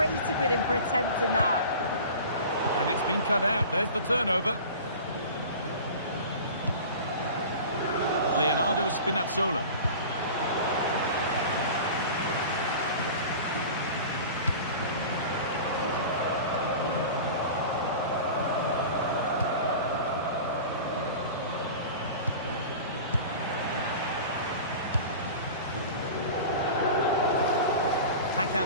with him for attempting that. And it's been cut out. There's the turnover. Leonardo Spinazzola.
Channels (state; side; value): inverted; both; correlation -0.37